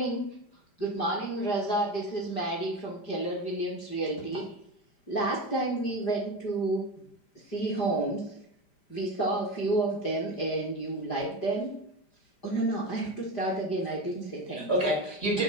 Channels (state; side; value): late; right; 5.0 ms